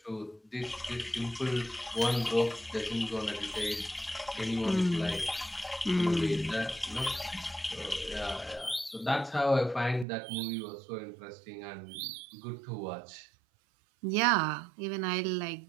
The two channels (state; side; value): drops out; left; at 10.1 s